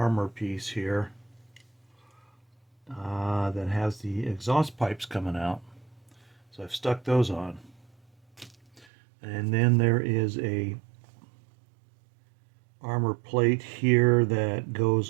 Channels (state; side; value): drops out; left; at 8.8 s